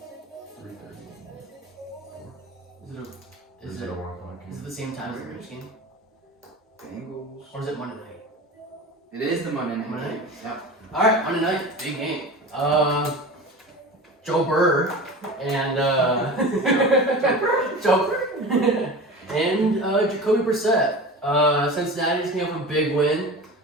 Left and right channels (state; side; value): normal; both; correlation 0.33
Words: 3:30. Is it Is it a 1 o'clock is it game? the same time as the Rams game? Bengals. It is the Monday night Monday game. night? Yep. All right, Monday night, big game. Joe Burr and Joe Burr and Jacoby Brissett. Cincinnati's came up with a big win.